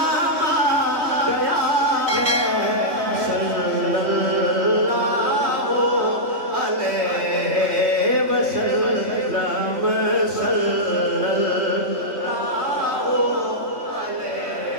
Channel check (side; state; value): left; late; 3.2 ms